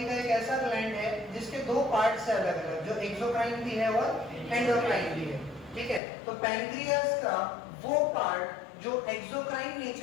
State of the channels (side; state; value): right; drops out; at 6.0 s